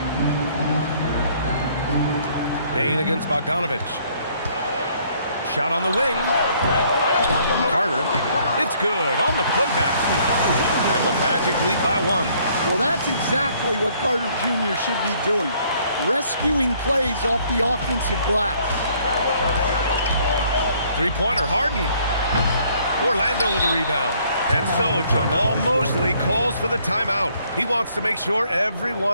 Bane against Bogdanovich. Shot on the wing. Carter. It's good on the putback. And the Magic lead by 1. Well, that's exactly what Carter Jr. should be doing. Rescuing plays off the offensive glass. Three-pointer, Harden. Orlando with the rebound. And so Jamal Mosley calls for the timeout. He wants to make sure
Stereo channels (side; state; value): both; inverted; correlation -0.63